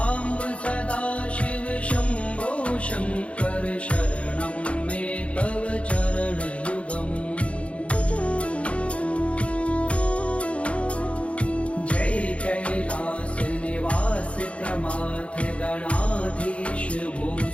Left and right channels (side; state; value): right; late; 0.062 ms